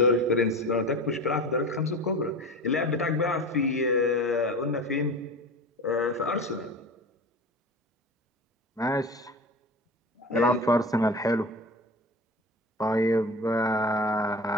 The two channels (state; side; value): normal; both; correlation 0.32